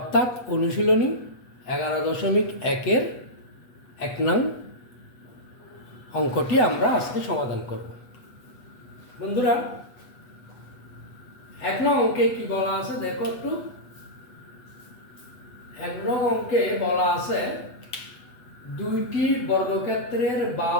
অনুশীলনী 11.1-এর 1 নং অঙ্কটি আমরা আজকে সমাধান করব। বন্ধুরা, 1 নং অঙ্কে কি বলা আছে দেখো একটু। 1 নং অঙ্কে বলা আছে দুইটি বর্গক্ষেত্রের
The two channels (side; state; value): right; late; 8.2 ms